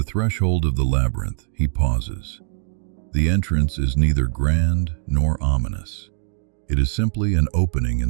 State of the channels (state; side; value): silent; left; 62 dB below the other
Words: threshold of the labyrinth, he pauses. The entrance is neither grand nor ominous. It is simply an opening